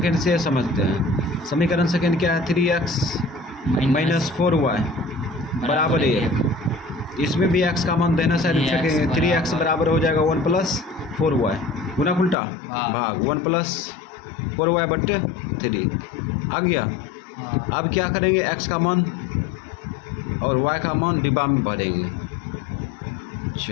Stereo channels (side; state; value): right; drops out; at 12.4 s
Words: से समझते हैं। समीकरण सेकेंड क्या है? 3x माइनस 4y बराबर 1। इसमें भी x का मान देना साइड फेंकेंगे। 3x बराबर हो जाएगा 1 प्लस 4y गुना उल्टा भाग 1 प्लस 4y बट्टे 3 आ गया। हाँ। अब क्या करेंगे? x का मान और y का मान डिब्बा में भरेंगे।